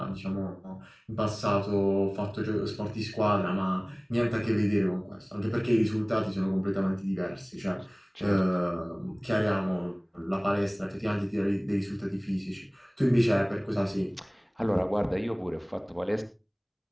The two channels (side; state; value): both; identical; correlation 1.00